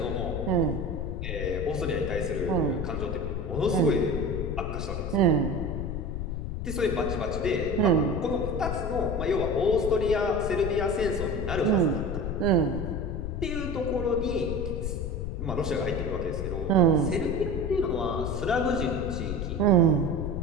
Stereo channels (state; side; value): noise; left; rumble, 3 dB below the sound